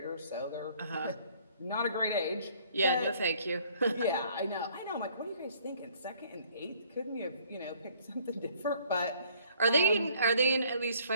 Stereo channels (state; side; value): inverted; both; correlation -0.60